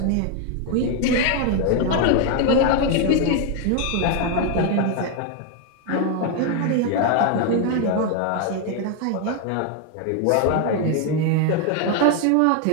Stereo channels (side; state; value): both; different; correlation 0.01